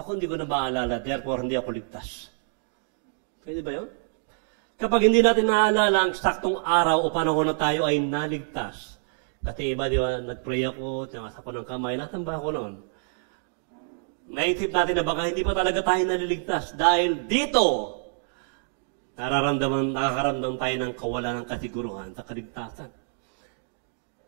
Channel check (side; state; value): left; silent; digital silence